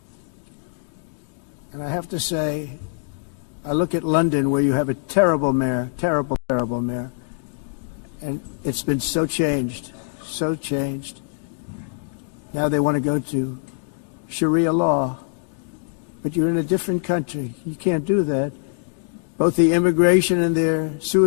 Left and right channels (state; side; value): silent; right; digital silence